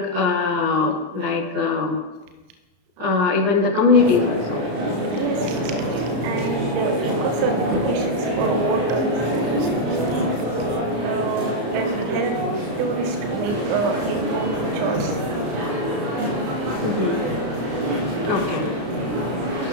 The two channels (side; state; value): left; late; 34 ms